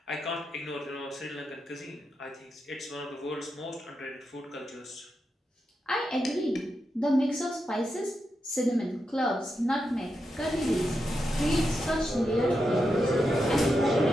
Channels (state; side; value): normal; both; correlation 0.86